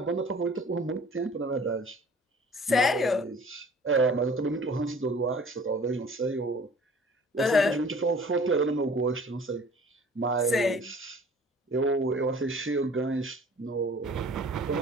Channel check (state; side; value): normal; both; correlation 0.49